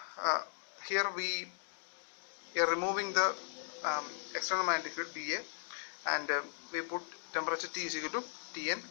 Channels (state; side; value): silent; right; digital silence